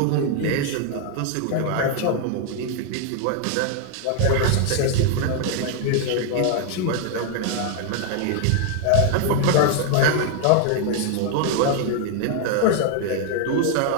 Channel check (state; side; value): different; both; correlation 0.00